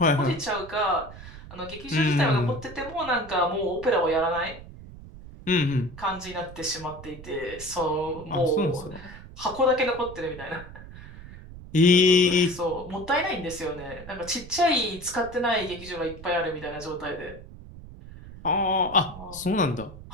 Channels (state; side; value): noise; right; rumble, 15 dB below the sound